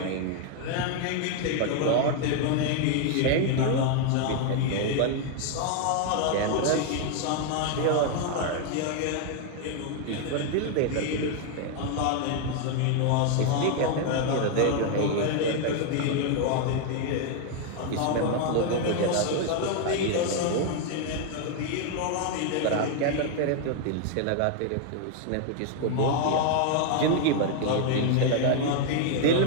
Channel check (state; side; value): different; both; correlation 0.00